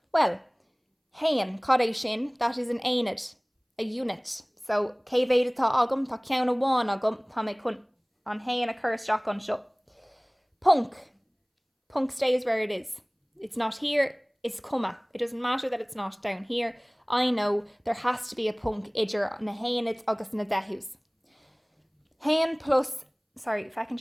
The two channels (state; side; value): identical; both; correlation 1.00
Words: Well, hain, cad sin, that is an aonid, a unit. So, cévéad atá agam, tá ceann amháin agam, tá mé chun an hain occurs Jack an seo. Punk. Punk stays where it is. It's not here, it's comma. It doesn't matter that it's not down here. I know there has to be a punk idir na hainid agus na dehús. Hain plus, sorry, if I can